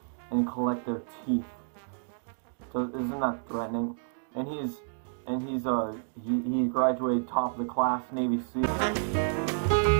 and collect their teeth. So, isn't that threatening? And he graduated top of the class, Navy SEAL.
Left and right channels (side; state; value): left; silent; digital silence